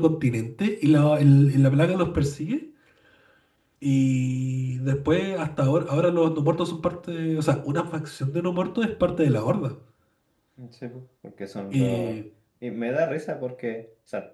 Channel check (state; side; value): identical; both; correlation 1.00